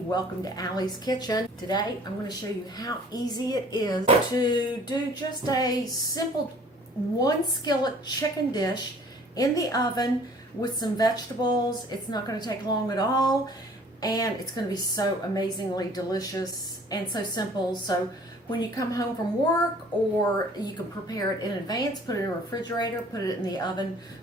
to Allie's Kitchen. Today I'm going to show you how easy it is to do just a simple one skillet chicken dish in the oven with some vegetables. It's not going to take long at all, and it's going to be so amazingly delicious and so simple. So when you come home from work, or you can prepare it in advance, put it in a refrigerator, put it in the oven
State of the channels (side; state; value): both; normal; correlation 0.53